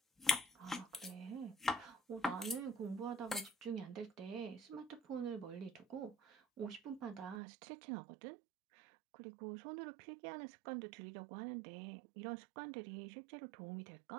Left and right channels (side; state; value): left; drops out; at 7.4 s